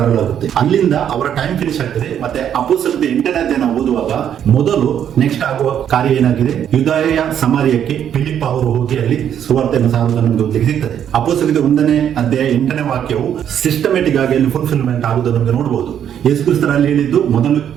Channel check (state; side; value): quieter; left; 9.4 dB